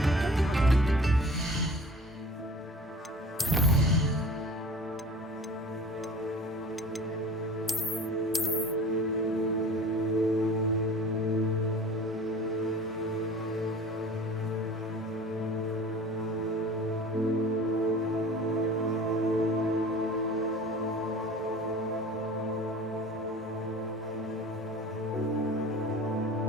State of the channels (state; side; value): normal; both; correlation 0.42